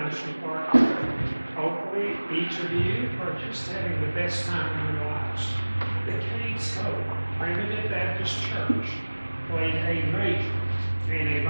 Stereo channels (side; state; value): both; inverted; correlation -1.00